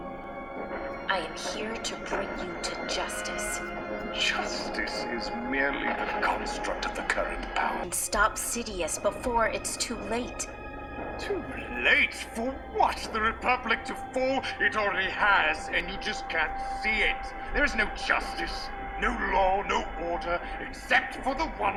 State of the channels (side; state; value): both; identical; correlation 1.00